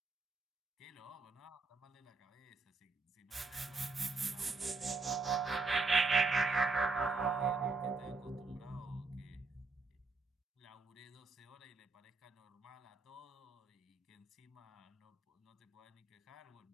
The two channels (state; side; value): quieter; left; 3.9 dB